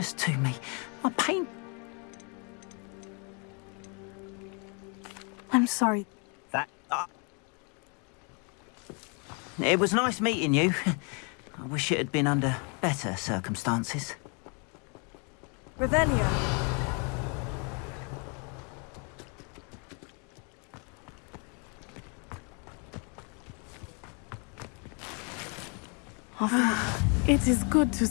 to me. My pain... I'm sorry. It was nice meeting you. I wish it had been under better circumstances. Revelio. It is good to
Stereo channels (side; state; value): right; quieter; 35.6 dB